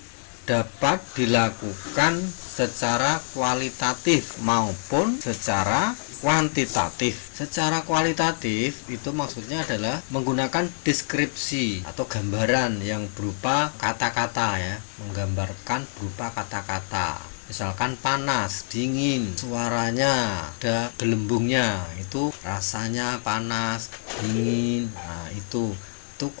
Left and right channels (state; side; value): silent; right; digital silence